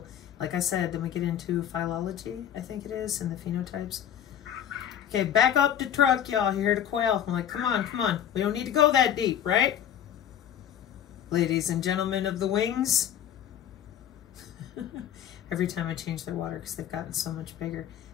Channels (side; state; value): right; quieter; 9.9 dB